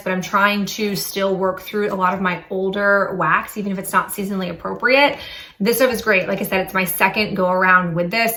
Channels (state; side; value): identical; both; correlation 1.00